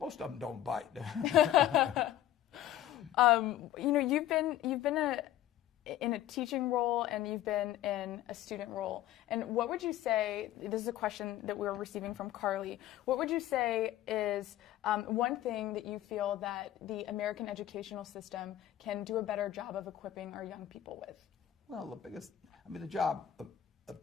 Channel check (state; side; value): quieter; right; 12.6 dB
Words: of them don't bite. You know, you've been in a teaching role, and you've been in a student role. And what would you say, this is a question that we're receiving from Carly, what would you say is one thing that you feel that the American educational system can do a better job of equipping our young people with? Well, the job of